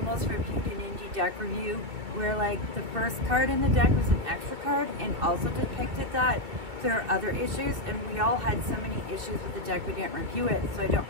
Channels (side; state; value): left; late; 2.7 ms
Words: reviewed in Indie Deck Review, where like the first card in the deck was an extra card and also depicted that. There are other issues, and we all had so many issues with the deck we didn't review it, so I don't